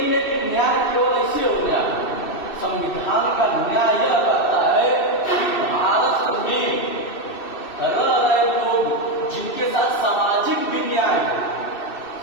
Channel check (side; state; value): right; late; 2.6 ms